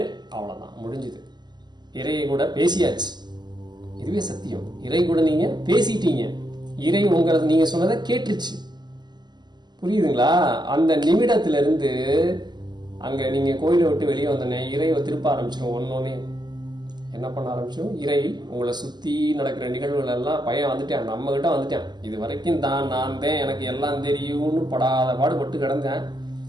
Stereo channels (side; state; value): left; late; 0.21 ms